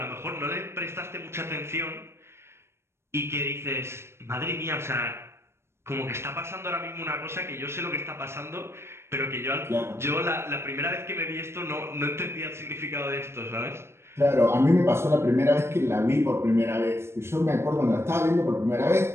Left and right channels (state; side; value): late; left; 0.12 ms